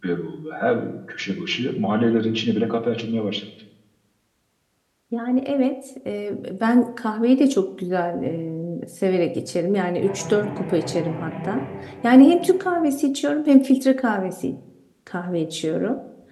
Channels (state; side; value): identical; both; correlation 1.00